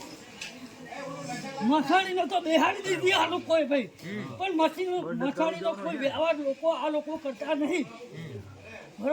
મસાણીને તો બેહાડી દીધી આ લોકોએ ભાઈ, પણ મસાણીનો કોઈ વ્યવહાર આ લોકો કરતા નહીં.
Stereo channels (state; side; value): identical; both; correlation 1.00